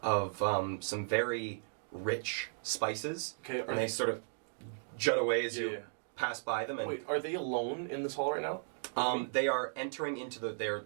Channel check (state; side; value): silent; left; digital silence